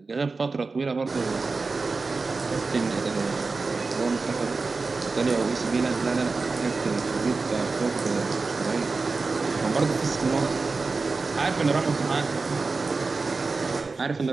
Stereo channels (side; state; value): left; quieter; 4.0 dB